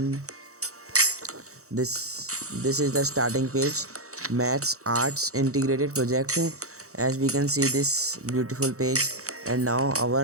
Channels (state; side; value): late; left; 0.64 ms